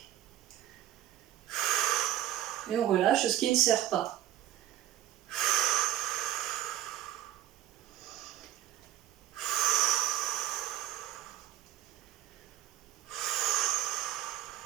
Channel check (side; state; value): left; quieter; 13.5 dB